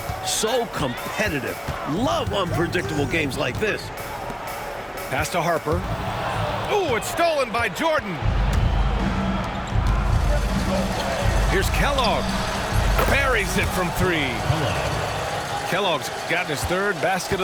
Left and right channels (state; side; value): identical; both; correlation 1.00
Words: So competitive. Love unpredictable games like this. Pass to Harper. Oh, it's stolen by Jordan. Here's Kellogg. Buries it from 3. Kellogg's gotten his 3rd basket